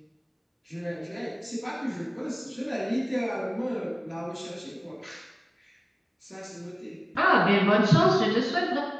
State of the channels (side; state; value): both; identical; correlation 1.00